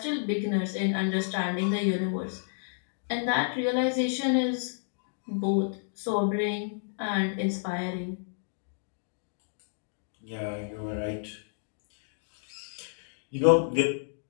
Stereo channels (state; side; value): silent; right; digital silence